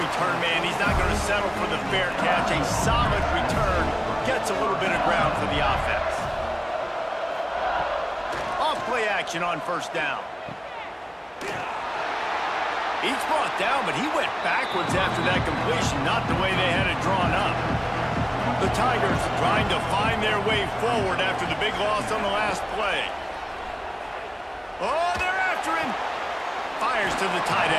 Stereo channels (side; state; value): both; identical; correlation 1.00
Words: return man. He's not going to settle for the fair catch. A solid return gets a little bit of ground for the offense. Off play action on first down. He's brought down, but he went backwards after that completion, not the way they had it drawn up. The Tigers trying to find their way forward after the big loss on the last play. Oh, they're after him. Fires to the tight